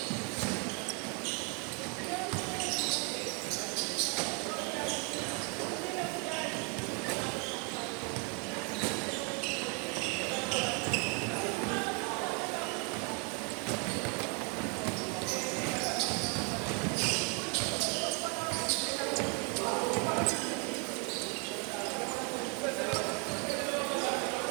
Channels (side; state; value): left; quieter; 35.4 dB